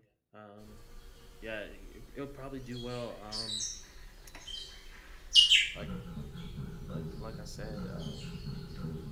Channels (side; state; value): both; identical; correlation 1.00